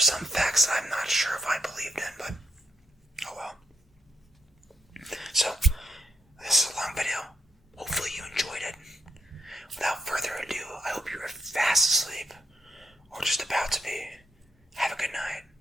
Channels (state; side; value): normal; both; correlation 0.74